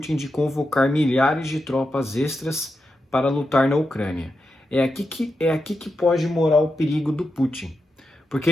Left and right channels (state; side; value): normal; both; correlation 0.88